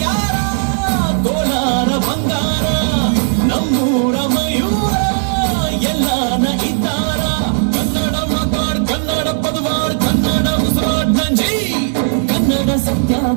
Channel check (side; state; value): left; silent; 69 dB below the other